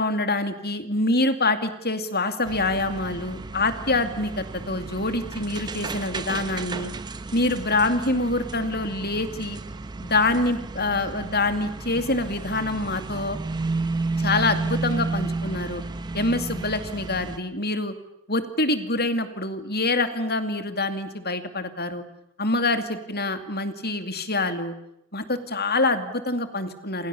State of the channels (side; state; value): both; normal; correlation 0.14